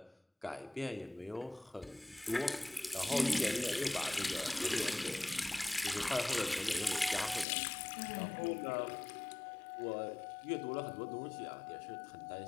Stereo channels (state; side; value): drops out; right; at 7.5 s